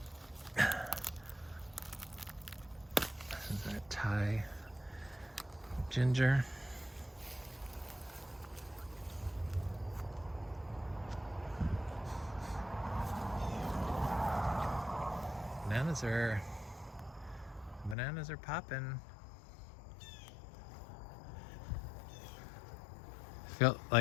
This is our Thai ginger. Bananas are popping. Felt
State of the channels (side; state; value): right; drops out; at 17.9 s